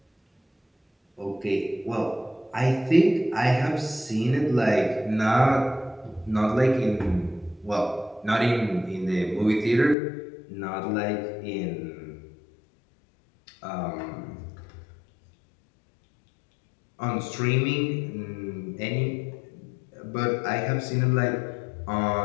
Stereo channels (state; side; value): drops out; right; at 10.0 s